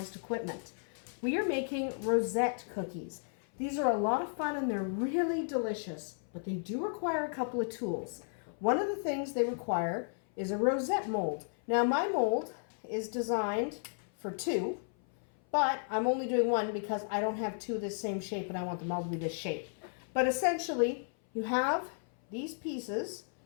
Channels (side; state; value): right; silent; 55 dB below the other